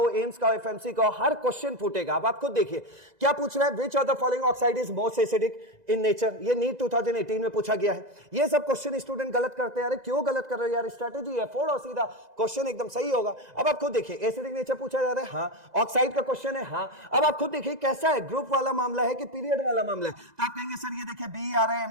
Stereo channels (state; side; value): late; left; 2.0 ms